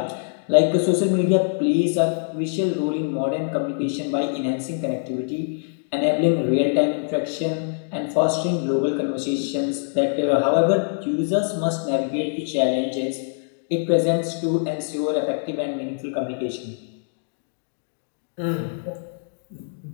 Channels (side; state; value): right; silent; digital silence